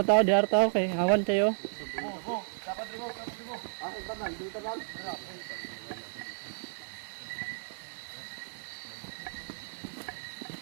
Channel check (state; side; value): silent; left; digital silence